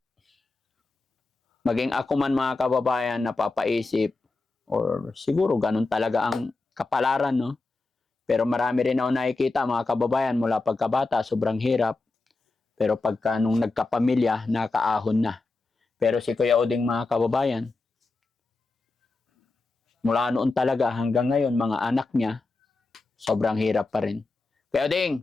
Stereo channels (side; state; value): right; quieter; 3.5 dB